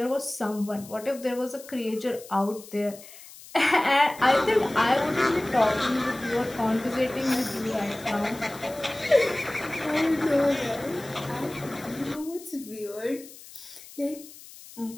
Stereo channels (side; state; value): left; noise; hiss, 18 dB below the sound